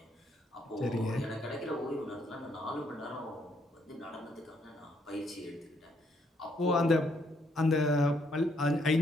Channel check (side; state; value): both; normal; correlation 0.72